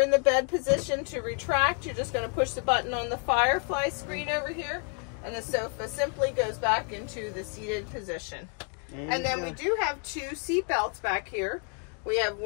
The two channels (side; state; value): right; quieter; 38.6 dB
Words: in the bed position to retract. You're just going to push the button on the Firefly screen over here and the sofa simply goes back into the seated position. And then we do have two seat belts back here. We have